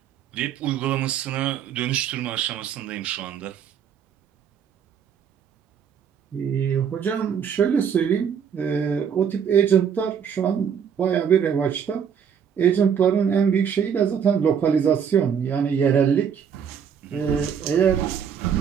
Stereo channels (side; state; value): left; quieter; 7.7 dB